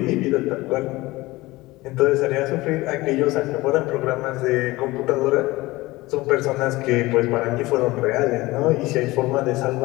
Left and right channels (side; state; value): right; quieter; 20.0 dB